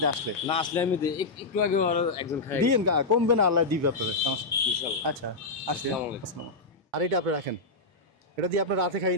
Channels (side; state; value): right; quieter; 3.3 dB